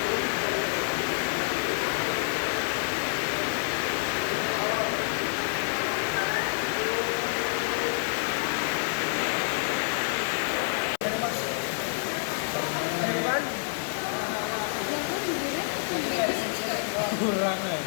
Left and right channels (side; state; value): right; silent; 59 dB below the other